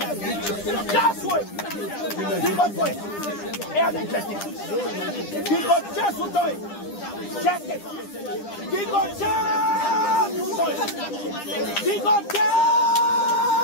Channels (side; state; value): right; late; 9.9 ms